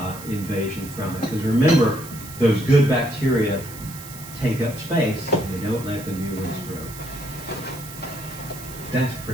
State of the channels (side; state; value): right; noise; hiss, 15 dB below the sound